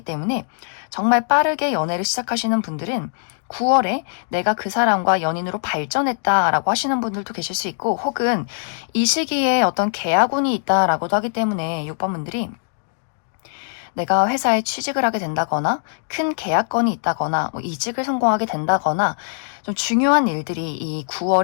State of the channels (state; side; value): silent; right; digital silence